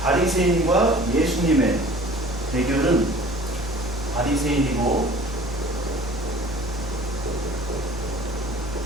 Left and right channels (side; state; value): both; normal; correlation 0.47